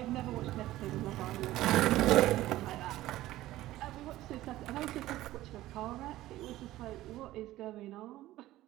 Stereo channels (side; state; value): left; quieter; 15.7 dB